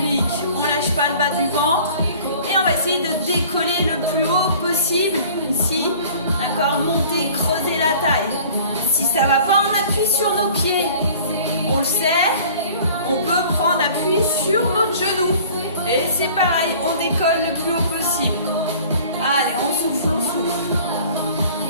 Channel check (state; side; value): inverted; both; correlation -0.48